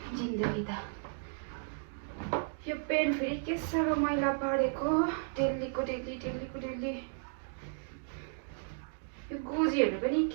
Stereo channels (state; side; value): silent; left; digital silence